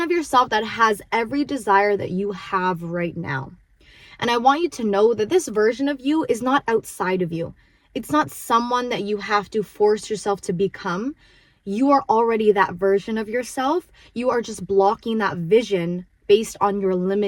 of yourself that has every desire that you have right now. And I want you to know that this version of you is not outside of you. It's not someone that you have to force yourself to become. You are already that version of yourself. You are just blocking that vision based on your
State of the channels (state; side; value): identical; both; correlation 1.00